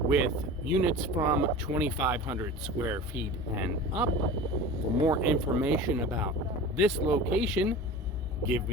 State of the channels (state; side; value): normal; both; correlation 0.34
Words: with units from 2,500 square feet and up. For more information about this location, give